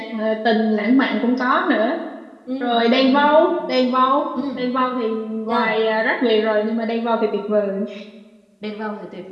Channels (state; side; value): identical; both; correlation 1.00